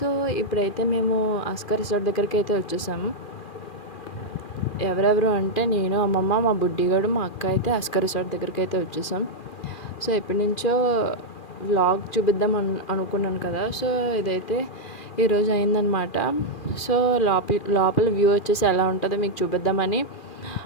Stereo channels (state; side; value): late; right; 2.4 ms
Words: ఇప్పుడైతే మేము ఆస్కార్ రిసార్ట్ దగ్గరికి అయితే వచ్చేసాము. ఎవరెవరు అంటే నేను, అమ్మమ్మ, మా బుడ్డిగాడు, మా అక్క అయితే ఆస్కార్ రిసార్ట్ దగ్గరికి అయితే వచ్చేసాం. సో ఎప్పటి నుంచో వ్లాగ్ చూపిద్దాం అనుకున్నాను కదా. సో ఇదైతే ఈరోజు అయిందనమాట. సో లోపల వ్యూ వచ్చేసి ఎలా ఉంటుందో మీకు చూపిద్దామని